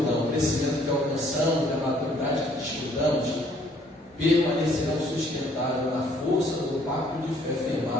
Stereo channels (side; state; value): both; normal; correlation 0.62